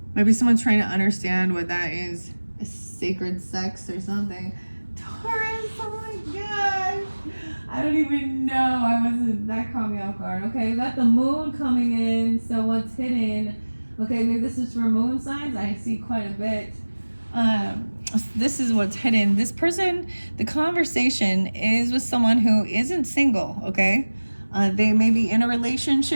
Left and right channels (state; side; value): inverted; both; correlation -1.00